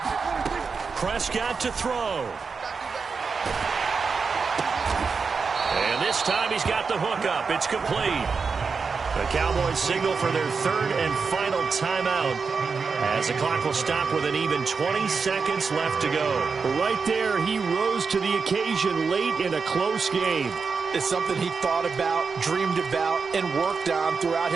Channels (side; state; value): left; quieter; 5.1 dB